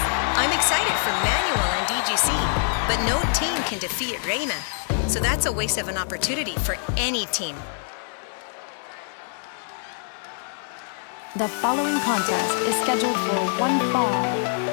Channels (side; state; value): right; silent; 61 dB below the other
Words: excited for Manuel and DGC, but no team can defeat Reina. So that's a waste of an opportunity for any team. The following contest is scheduled for one fall.